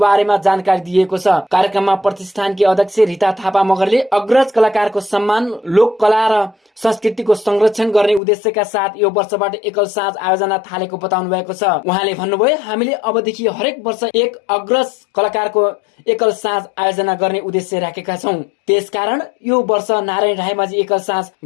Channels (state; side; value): drops out; right; at 8.2 s